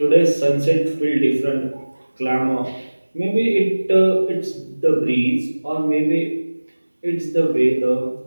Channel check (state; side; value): inverted; both; correlation -1.00